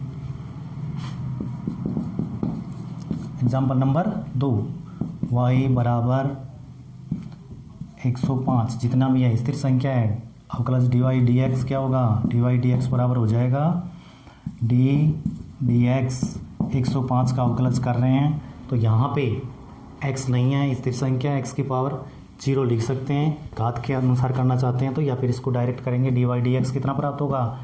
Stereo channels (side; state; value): both; identical; correlation 1.00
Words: example number 2, y बराबर 105 जितना भी है स्थिर संख्या है, अवकलज dy dx क्या होगा, dy dx बराबर हो जाएगा d dx 105 का अवकलज कर रहे हैं, तो यहाँ पे x नहीं है स्थिर संख्या, x की पावर 0 लिख सकते हैं, घात के अनुसार करना चाहते हैं तो या फिर इसको डायरेक्ट करेंगे, dy dx कितना प्राप्त होगा,